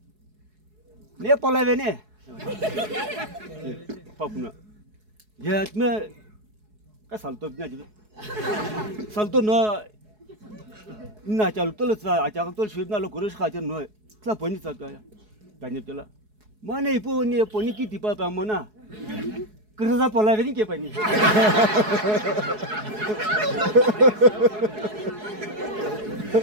내 폴라베네 밥나 야트메 까 살토 비냐 지 살토 너 나 잘떨어서 아자가 쉬브나로 고르시 가져 너 클라 보니 잡아야 다니들라 뭐네 보니 보니키 디바바 뭐나 그러다 폴라베니 게 보니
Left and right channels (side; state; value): left; late; 4.7 ms